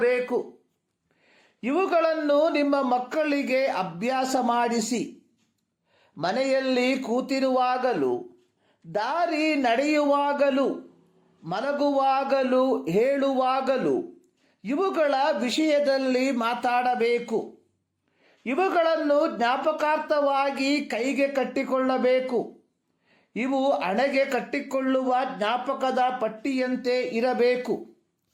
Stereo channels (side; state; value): both; identical; correlation 1.00